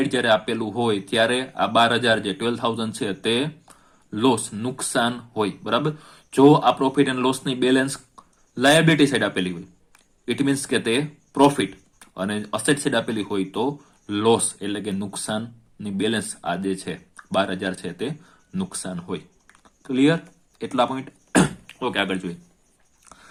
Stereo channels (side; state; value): both; identical; correlation 1.00